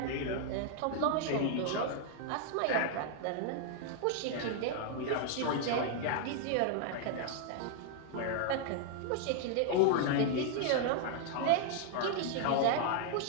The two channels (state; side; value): different; both; correlation 0.00